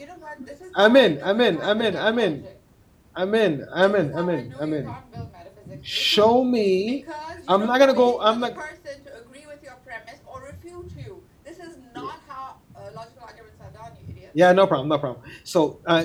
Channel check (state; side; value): identical; both; correlation 1.00